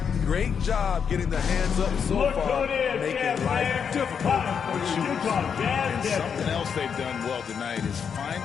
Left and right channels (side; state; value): right; quieter; 6.9 dB